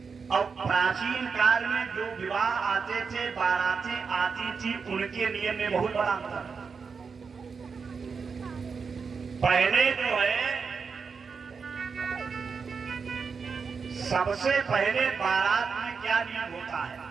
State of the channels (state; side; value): quieter; left; 5.4 dB